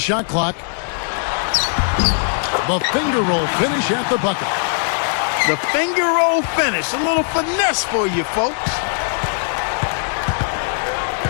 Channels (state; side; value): silent; right; 56 dB below the other